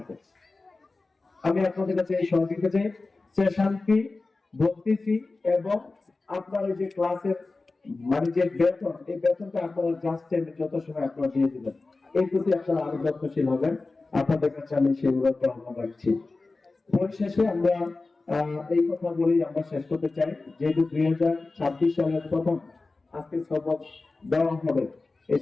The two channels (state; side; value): quieter; right; 3.6 dB